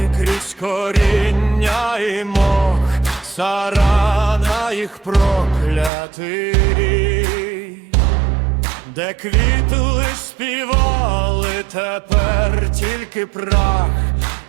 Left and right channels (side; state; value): left; drops out; at 5.9 s